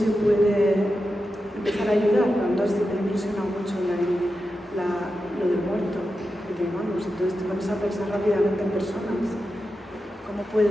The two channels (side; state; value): both; normal; correlation 0.90